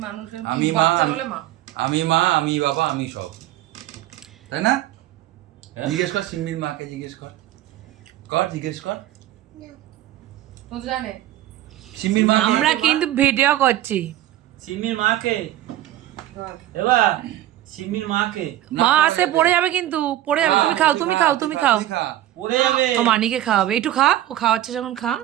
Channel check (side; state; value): left; quieter; 13.9 dB